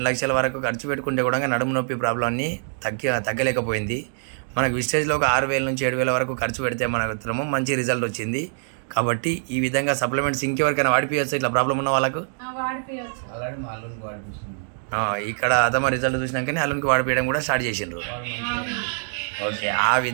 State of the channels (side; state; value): left; silent; digital silence